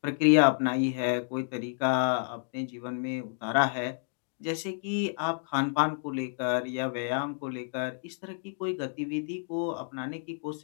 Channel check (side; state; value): right; silent; digital silence